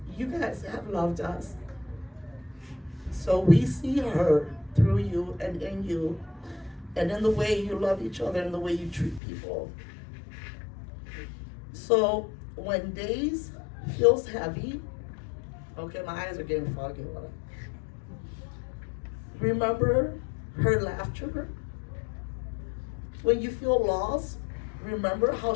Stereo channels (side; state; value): right; drops out; at 9.2 s